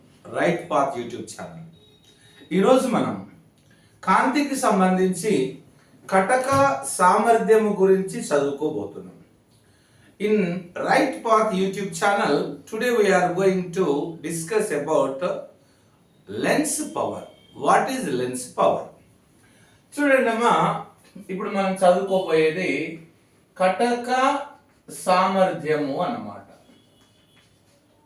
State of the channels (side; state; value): both; identical; correlation 1.00